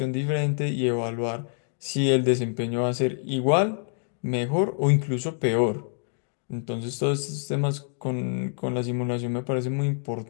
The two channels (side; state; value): right; silent; 61 dB below the other